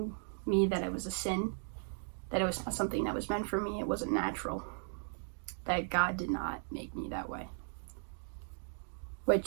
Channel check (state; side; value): silent; left; digital silence